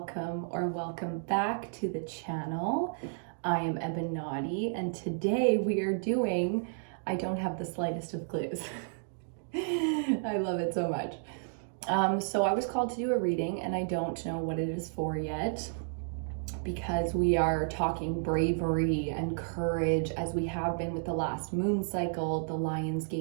back to the channel. I am EBINOTTI, and today we are doing, I don't have the slightest of clues. I love it so much. So I was called to do a reading, and I don't know what it is for yet, because we are talking bravery and courage, as we have been with the last moon cycle, the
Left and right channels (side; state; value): left; silent; digital silence